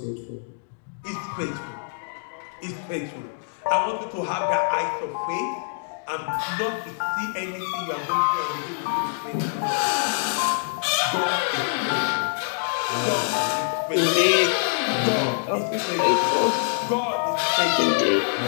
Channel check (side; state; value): right; silent; digital silence